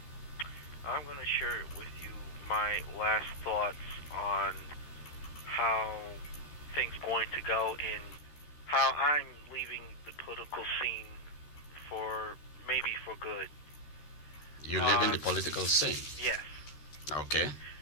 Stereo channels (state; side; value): late; right; 13 ms